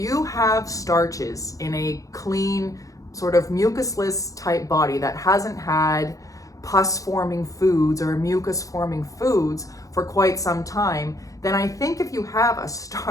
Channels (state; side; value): late; right; 0.16 ms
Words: have starches in a clean, sort of mucusless type body that hasn't had pus forming foods or mucus forming foods for quite some time, then I think if you have a